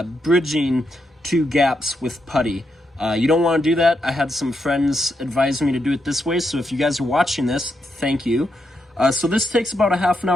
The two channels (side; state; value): both; normal; correlation 0.82